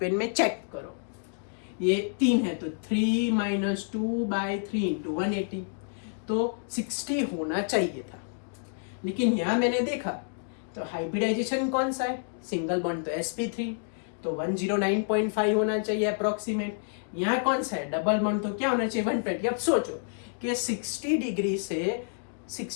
में चेक करो, ये 3 है तो 3 माइनस 2/3 इंटू 180, तो 60 होना चाहिए था। लेकिन यहां मैंने देखा तो हाइब्रिडाइजेशन कौन सा है? सिंगल बॉन्ड तो sp3, तो 109.5 होना चाहिए अप्रोक्सीमेट। यहाँ कौन सा है? डबल बॉन्ड, तो क्या होना चाहिए? 120। अब सोचो कि 60 डिग्री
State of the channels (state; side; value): silent; right; digital silence